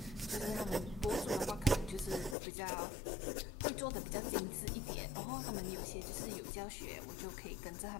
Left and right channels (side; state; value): right; drops out; at 2.4 s